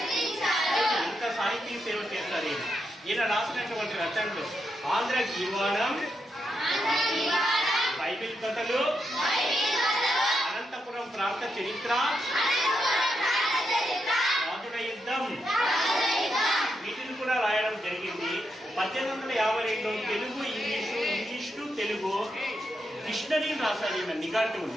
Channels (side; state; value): both; normal; correlation 0.83